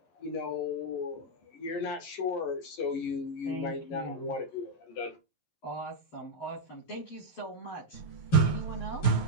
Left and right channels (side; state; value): right; late; 11 ms